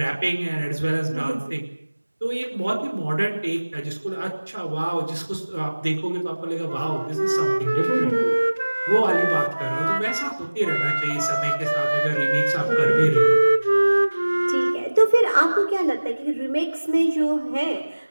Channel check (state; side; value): inverted; both; correlation -1.00